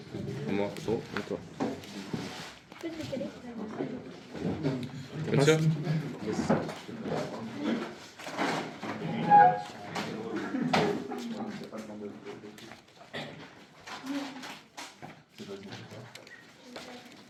Moi, trop. À toi. Je peux te décaler. Bien sûr. Yes.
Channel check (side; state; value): both; identical; correlation 1.00